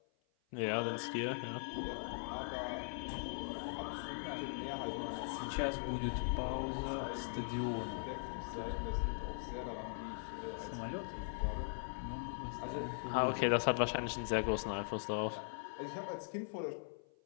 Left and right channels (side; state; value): right; silent; 51 dB below the other